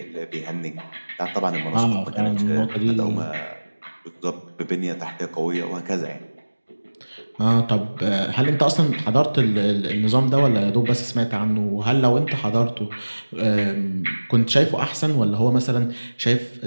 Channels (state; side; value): inverted; both; correlation -1.00